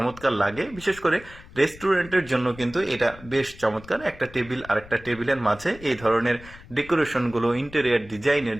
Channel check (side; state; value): left; noise; rumble, 19 dB below the sound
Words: লাগে। বিশেষ করে রেস্টুরেন্টের জন্য কিন্তু এটা বেশ চমৎকার। একটা টেবিল আর একটা টেবিলের মাঝে এই ধরনের ডেকোরেশনগুলো, ইন্টেরিয়ার ডিজাইনের